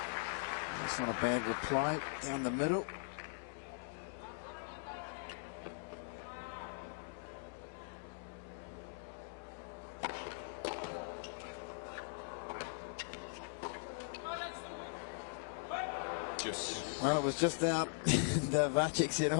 That's not a bad reply down the middle. Well, it was just out, and Vacek said,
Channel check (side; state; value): right; silent; digital silence